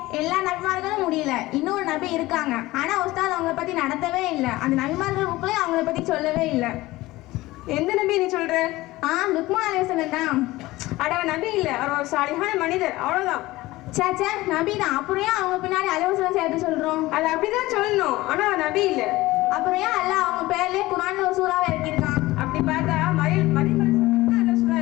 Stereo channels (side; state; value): right; quieter; 18.6 dB